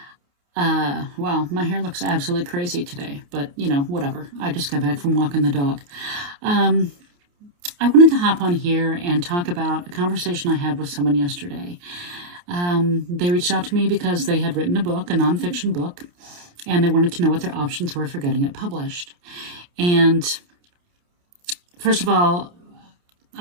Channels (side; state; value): left; late; 28 ms